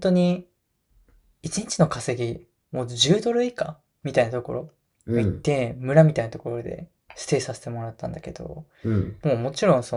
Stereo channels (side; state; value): both; identical; correlation 1.00